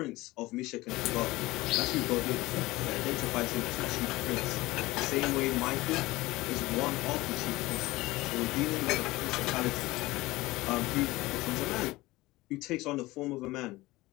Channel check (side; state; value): right; quieter; 19.7 dB